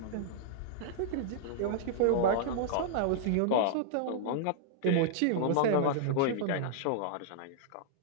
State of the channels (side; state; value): both; different; correlation -0.02